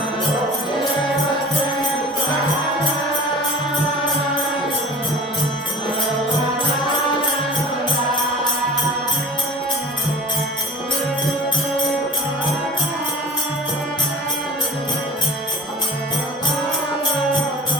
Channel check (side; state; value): both; normal; correlation 0.40